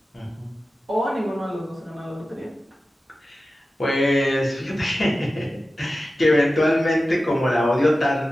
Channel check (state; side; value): normal; both; correlation 0.94